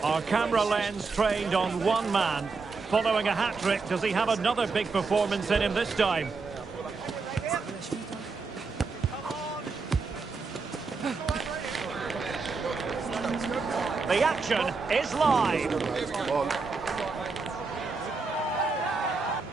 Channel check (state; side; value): quieter; left; 4.4 dB